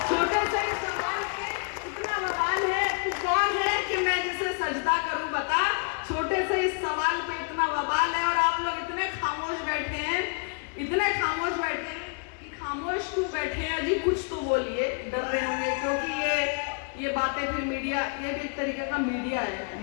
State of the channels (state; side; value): quieter; right; 39.4 dB